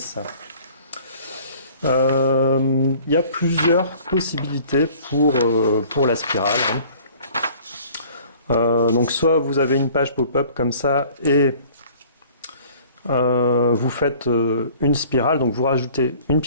? Il y a plusieurs possibilités pour la spirale. Donc soit vous avez une page pop-up comme ça et vous faites une spirale, donc vous rajoutez une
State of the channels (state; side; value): inverted; both; correlation -0.51